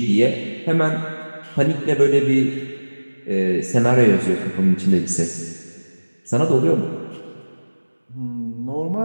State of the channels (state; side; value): inverted; both; correlation -1.00